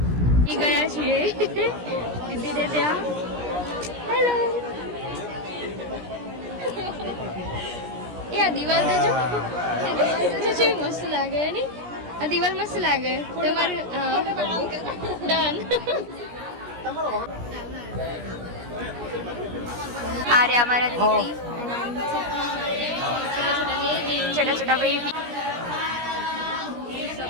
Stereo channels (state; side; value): late; left; 17 ms